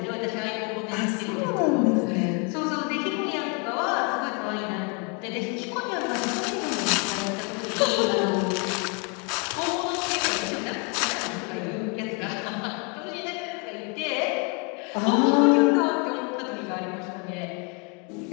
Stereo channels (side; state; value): right; quieter; 34.4 dB